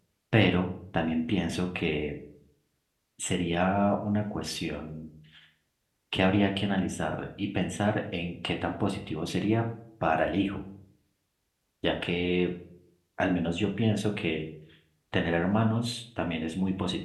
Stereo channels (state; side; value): identical; both; correlation 1.00